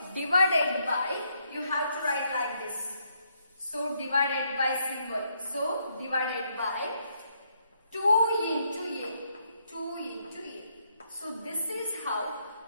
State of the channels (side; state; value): both; inverted; correlation -0.75